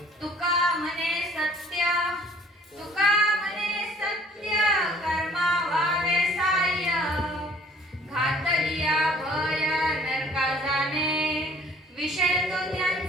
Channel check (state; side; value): normal; both; correlation 0.55